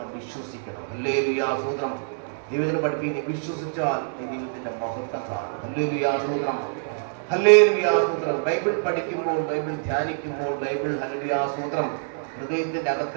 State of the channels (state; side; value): silent; left; digital silence